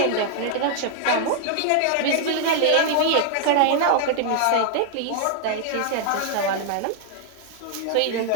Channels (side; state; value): both; different; correlation 0.00